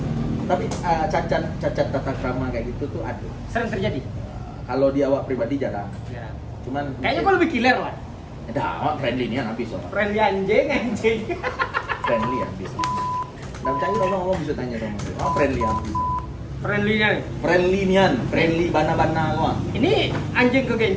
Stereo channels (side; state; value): both; identical; correlation 1.00